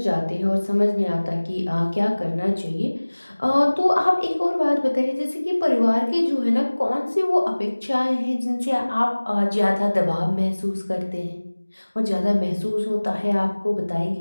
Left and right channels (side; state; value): both; inverted; correlation -1.00